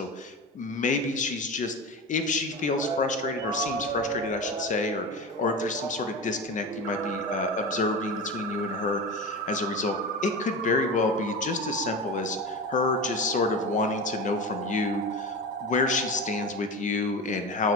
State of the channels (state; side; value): normal; both; correlation 0.26